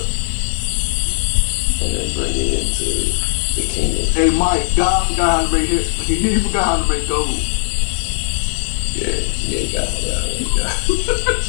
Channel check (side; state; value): right; silent; digital silence